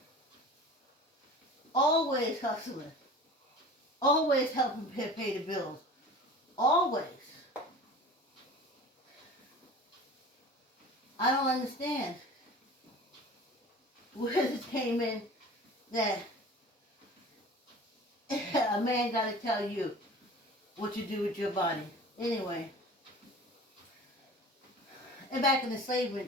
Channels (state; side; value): normal; both; correlation 0.40